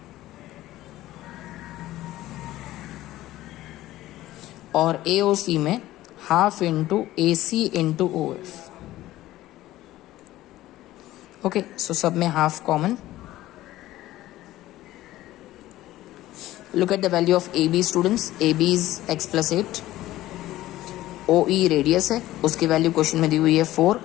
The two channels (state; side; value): quieter; right; 15.6 dB